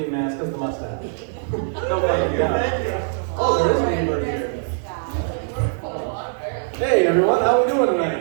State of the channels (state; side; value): silent; left; digital silence